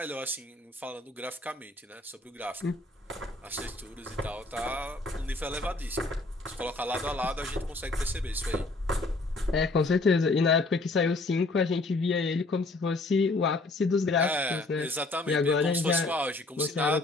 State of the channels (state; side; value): quieter; right; 3.1 dB